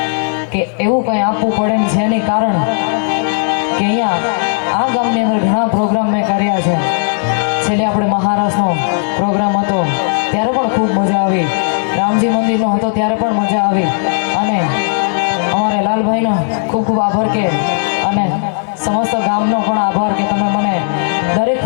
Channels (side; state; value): right; silent; digital silence